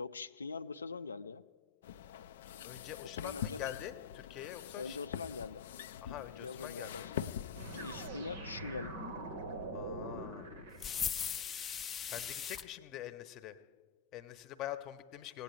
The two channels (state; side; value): quieter; right; 5.8 dB